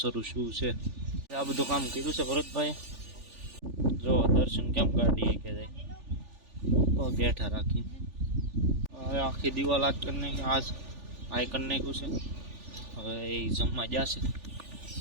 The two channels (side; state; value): left; late; 3.4 ms